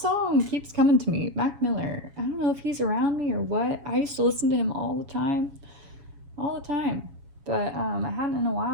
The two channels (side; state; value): left; late; 7.2 ms